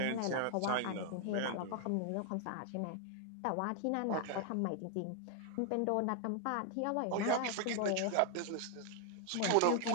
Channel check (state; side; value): different; both; correlation 0.00